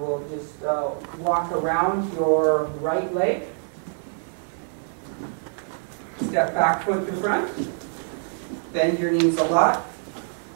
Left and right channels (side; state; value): left; silent; 61 dB below the other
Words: just walk around your right leg. Step back foot to front. Bend your knees a lot.